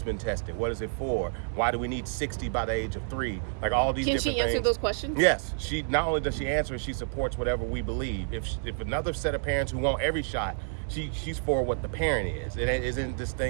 been tested? What is it for? Why do we need 60 by the age of 3? Like all these different things. Can she answer those questions? Yes. She not only does she answer, she supports whatever we believe. If another set of parents who want every shot, she's for what the parent is. It isn't this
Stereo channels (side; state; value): left; silent; digital silence